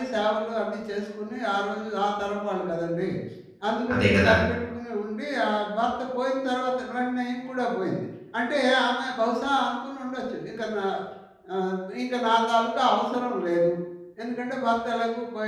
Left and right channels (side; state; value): both; identical; correlation 1.00